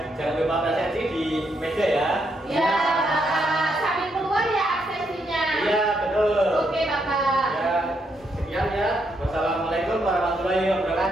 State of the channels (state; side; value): normal; both; correlation 0.77